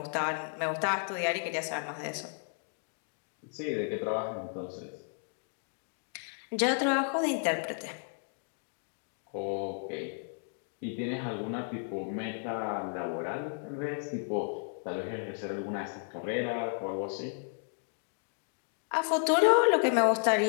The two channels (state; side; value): silent; right; 56 dB below the other